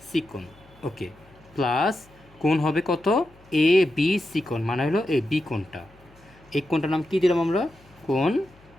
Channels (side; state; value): left; noise; hum, 28 dB below the sound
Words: সি কোণ। ওকে, প্লাস কোণ হবে কত? এ বি সি কোণ, মানে হলো এই বি কোণটা। এই কোণটার নাম কি দিলাম আমরা? কোণ